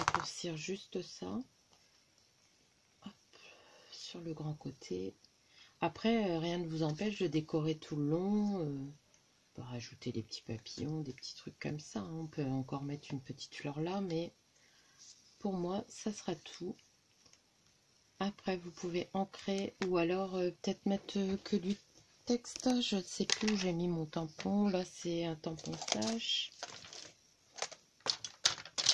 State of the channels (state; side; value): identical; both; correlation 1.00